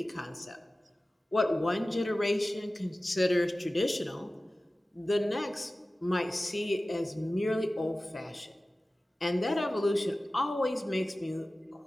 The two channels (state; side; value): normal; both; correlation 0.96